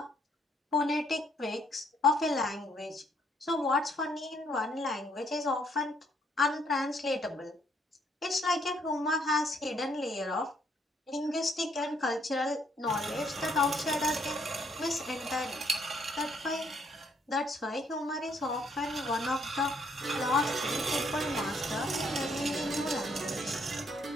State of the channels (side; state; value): both; normal; correlation 0.69